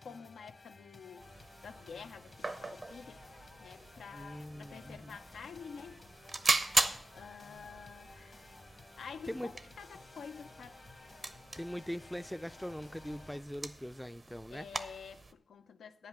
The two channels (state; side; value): normal; both; correlation 0.95